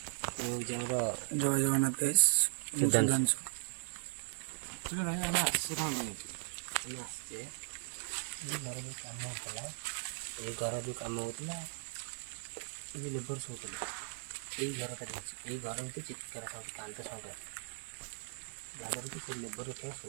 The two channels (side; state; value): left; silent; digital silence